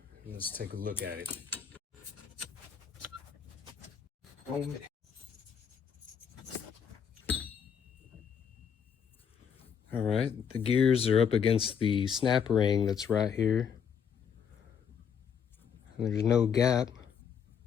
let's take a look at it. All right, the gears are up against the snap ring that's right here. And there's no gap,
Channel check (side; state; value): right; quieter; 7.4 dB